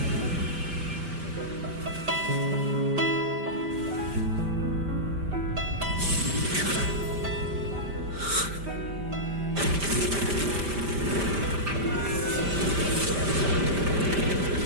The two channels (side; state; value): left; late; 5.1 ms